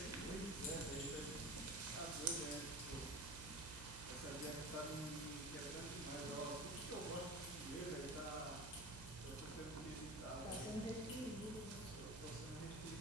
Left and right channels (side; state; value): right; noise; hum, 11 dB below the sound